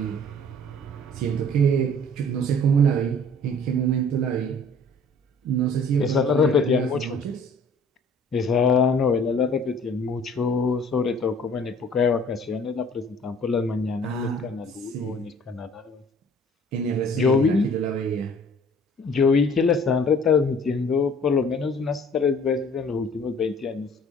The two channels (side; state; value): both; normal; correlation 0.52